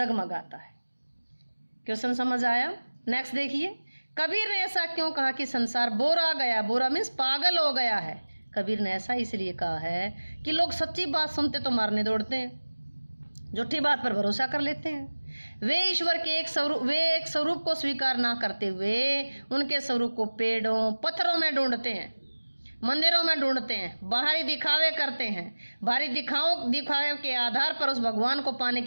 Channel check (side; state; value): both; inverted; correlation -1.00